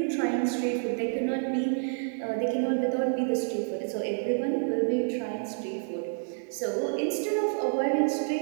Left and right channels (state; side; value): silent; left; digital silence